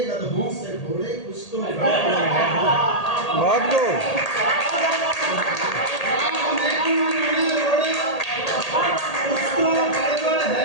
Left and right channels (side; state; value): right; late; 1.8 ms